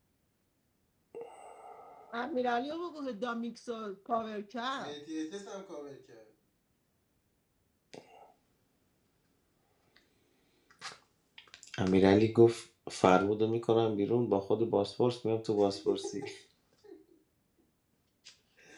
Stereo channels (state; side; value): identical; both; correlation 1.00